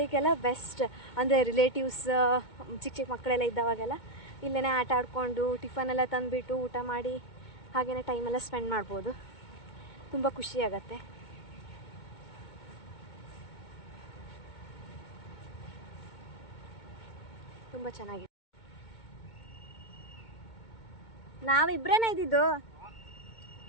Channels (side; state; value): right; late; 2.2 ms